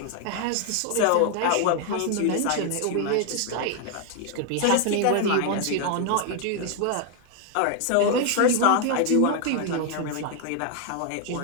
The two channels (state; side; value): different; both; correlation 0.00